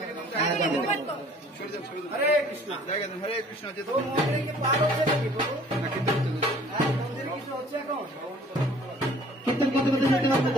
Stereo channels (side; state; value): both; normal; correlation 0.53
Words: যাব। হরে কৃষ্ণ, হরে কৃষ্ণ। কীর্তন করতে করতে যেতে পারবে